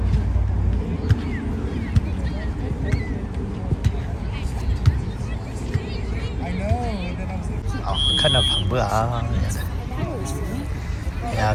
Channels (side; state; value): both; identical; correlation 1.00